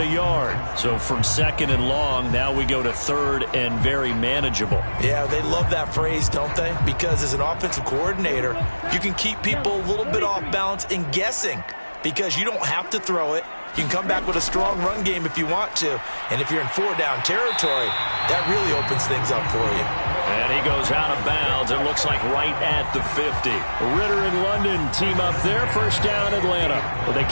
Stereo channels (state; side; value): inverted; both; correlation -1.00